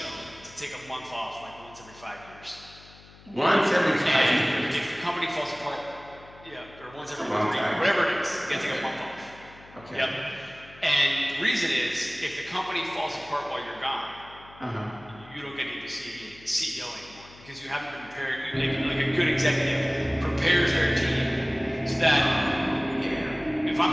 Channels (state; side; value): noise; left; hum, 22 dB below the sound